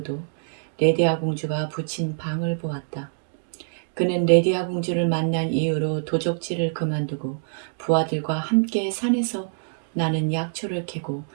레디아 공주가 붙인 방을 보았다. 그는 레디아 공주를 만난 이후로 도적질을 그만두고 부하들과 함께 산에서 나는 약초를 캐고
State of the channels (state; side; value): silent; left; digital silence